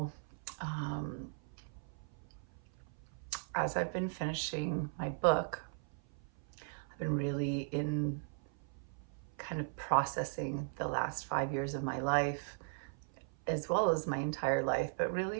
as I've been finishing my book, I've been really in kind of processing the last 5 years of my life, as well as my entire life, but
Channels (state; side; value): silent; left; 53 dB below the other